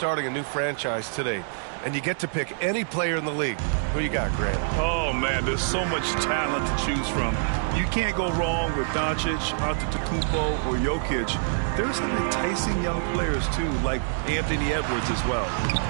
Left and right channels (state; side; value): silent; left; digital silence